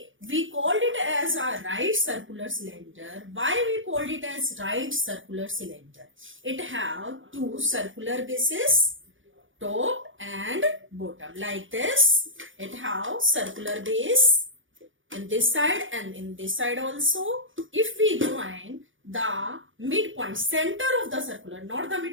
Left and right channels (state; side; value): late; left; 0.57 ms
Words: we called it as a right circular cylinder. Why we called it as right circular cylinder? It have two circular bases, top and bottom, like this. It have circular base in this side and in this side also. If we join the midpoint, center of the circular, not the